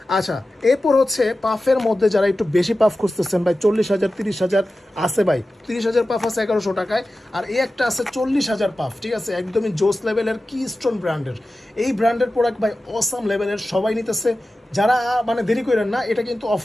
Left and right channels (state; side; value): normal; both; correlation 0.94